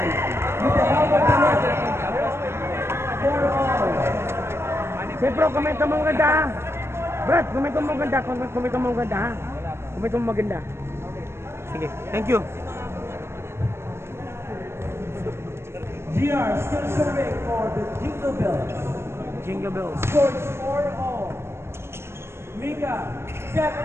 With the help of the net. 4-all. Siyempre, komento mo maganda ha. Brad, komento mo maganda. Komento mo maganda ha. Komento mo maganda. Sige, thank you. GR still serving for the Jingle Bells. Jingle bells. Scores 4-all. Mika, step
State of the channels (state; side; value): late; left; 0.12 ms